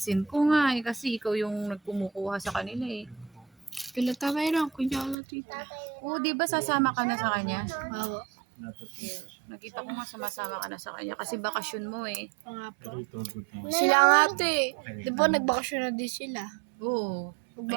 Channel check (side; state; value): left; drops out; at 5.2 s